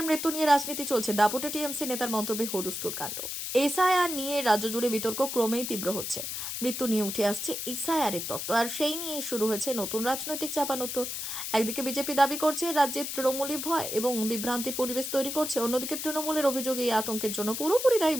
মৃত্যু নিয়ে রাজনীতি চলছে। দাপুটে টিএমসি নেতার মন্তব্যে হুলস্থুল কাণ্ড। এসআইআর নিয়ে রাজ্য জুড়ে বিতর্ক ক্রমেই তীব্র হচ্ছে। মৃত্যু নিয়ে উঠে আসছে এসআইআরের তত্ত্ব, আর সেই নিয়ে শুরু হয়েছে নতুন রাজনৈতিক চাপানোত্তর। একদিকে বিজেপি দাবি করছে রাজ্যে তৃণমূলই ভয় এবং বিভ্রান্তির পরিবেশ তৈরি করছে, অন্যদিকে তৃণমূলের অভিযোগ এই আতঙ্কের জন্য পুরোপুরি দায়ী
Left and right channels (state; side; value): noise; left; hiss, 5 dB below the sound